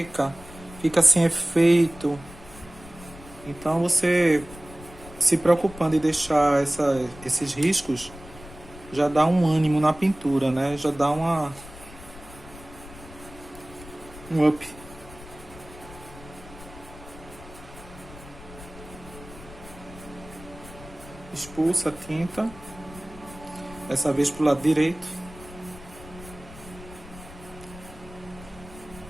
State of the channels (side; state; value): left; noise; rumble, 17 dB below the sound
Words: fica sem efeito. Então você se preocupando em deixar esses riscos, já dá um ânimo na pintura, né? Já dá um up. Expulsa a tinta, dessa vez pro lado direito.